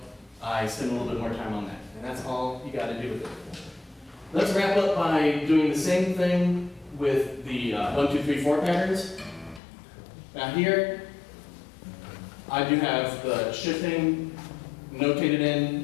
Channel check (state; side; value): drops out; right; at 9.6 s